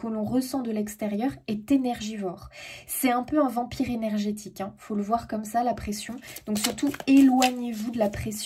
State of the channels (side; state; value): both; identical; correlation 1.00